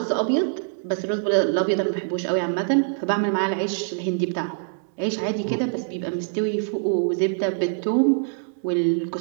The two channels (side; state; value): left; silent; digital silence